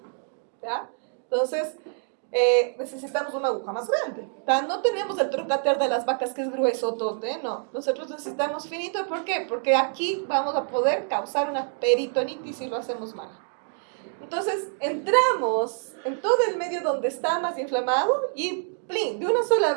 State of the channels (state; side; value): silent; left; 61 dB below the other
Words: ¿Ya? Entonces, necesitamos una aguja más grande. ¿Tá? No tenemos el trocater de las vacas que es grueso, tote, no. Nosotros necesitamos finito, ¿por qué? Porque aquí vamos a poder causar una peritonitis si lo hacemos mal. Entonces, entramos en todo el medio donde está más inflamado y plin, de una sola